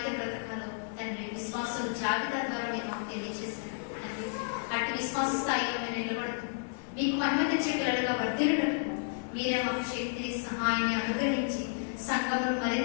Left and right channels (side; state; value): right; silent; 57 dB below the other